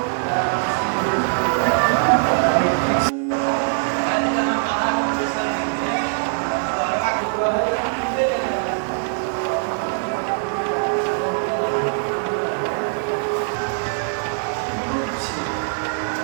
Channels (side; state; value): left; silent; digital silence